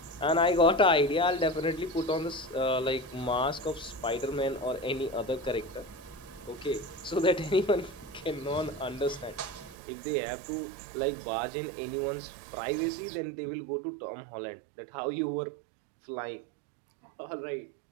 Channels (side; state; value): left; drops out; at 9.8 s